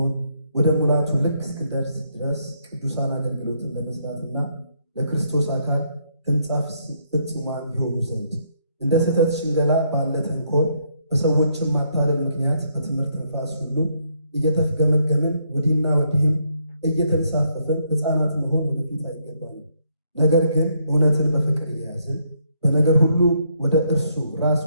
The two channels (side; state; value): both; inverted; correlation -0.73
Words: ወደ ሙላቱ ልክ እስክንደርስ ድረስ ቅዱሳን አገልግሎትን ለመስራትና ለክርስቶስ አካል ሕንጻ ፍጹማን ይሆኑ ዘንድ እንደ ስህተት ሽንገላ ባለ ተንኮል በሰዎችም ማታለል ምክንያት በትምህርት ነፋስ ሁሉ እየተፍገመገምን ወዲህና ወዲህም እየተንሳፈፍን ሕፃናት መሆን ወደፊት አይገባንም። ነገር ግን እውነትን በፍቅር እየያዝን በነገር ሁሉ ወደ እርሱ ራስ